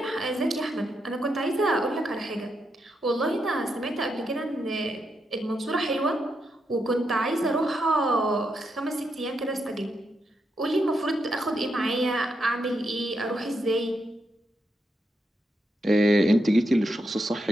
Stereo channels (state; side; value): normal; both; correlation 0.82